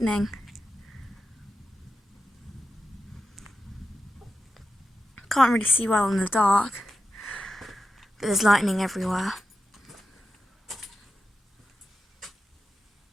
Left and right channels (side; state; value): both; normal; correlation 0.89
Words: Can't really see well in the dark, but there's lightning everywhere.